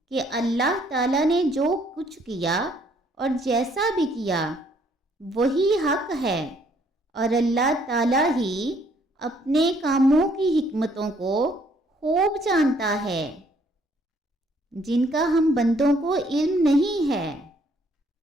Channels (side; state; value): both; normal; correlation 0.65